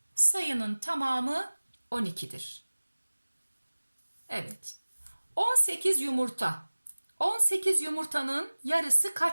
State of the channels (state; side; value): inverted; both; correlation -1.00